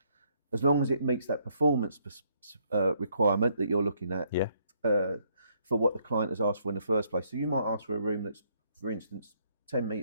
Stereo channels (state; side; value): inverted; both; correlation -0.71